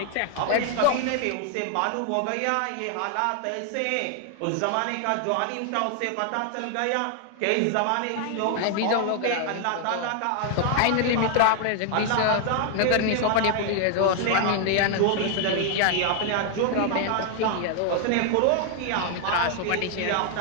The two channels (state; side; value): different; both; correlation 0.00